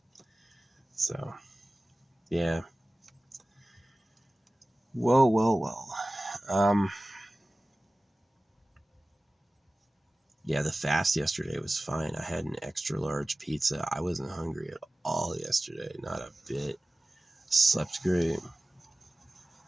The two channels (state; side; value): normal; both; correlation 0.97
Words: So, yeah. Whoa, whoa, whoa. Um, yeah, the fast yesterday was fine. I had an extra large pizza. I wasn't hungry at all yesterday, not a bit. Slept great.